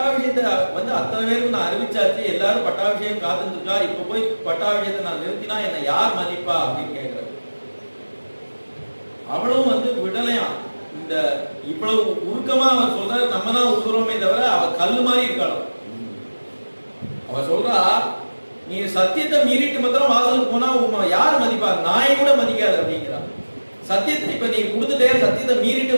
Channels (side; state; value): both; inverted; correlation -1.00